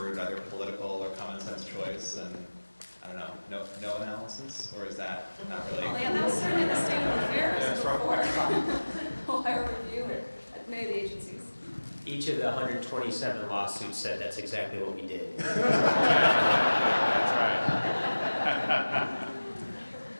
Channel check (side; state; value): both; inverted; correlation -1.00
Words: either political or common sense choice, and I don't know, no analysis, or is that not really? Well, yeah, that's certainly the state of affairs before higher review at many of the agencies. Each of the 127 lawsuits said that's exactly what we did.